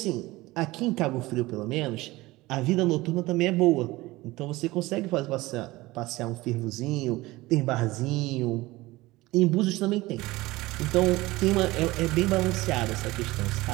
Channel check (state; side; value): quieter; left; 19.7 dB